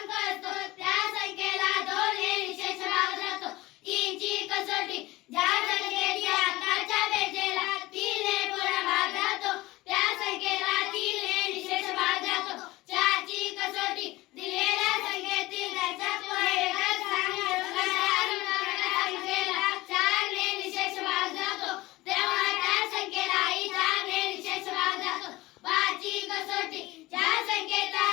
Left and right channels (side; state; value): right; quieter; 19.5 dB